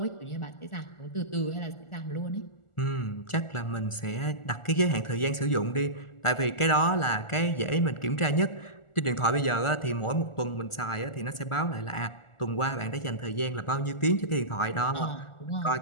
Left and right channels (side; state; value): right; late; 1.4 ms